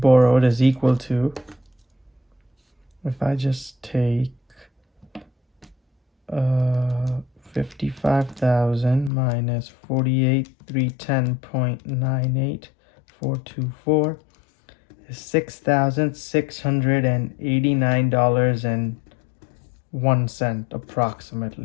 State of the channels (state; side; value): drops out; right; at 9.1 s